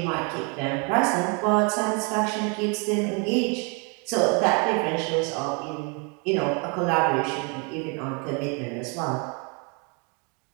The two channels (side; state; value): left; quieter; 34.0 dB